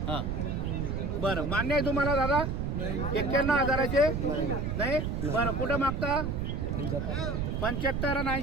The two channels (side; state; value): right; noise; rumble, 1 dB below the sound